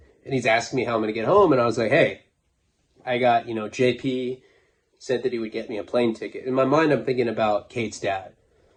and he's asking me how I'm going to get home, and I was like, hey, I got, you know, JP said that he would get me a plane ticket. In my mind, I'm thinking about Kate's dad.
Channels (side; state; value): both; identical; correlation 1.00